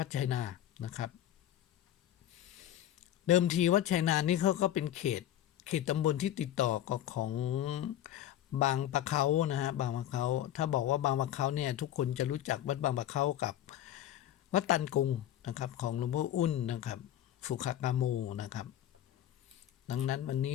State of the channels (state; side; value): quieter; right; 12.0 dB